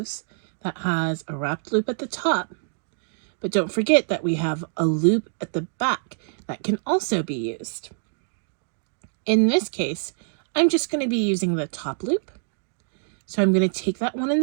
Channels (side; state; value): left; silent; digital silence